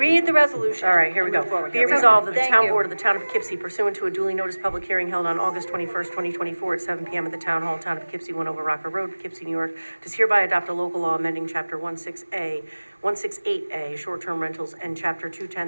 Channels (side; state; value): both; inverted; correlation -1.00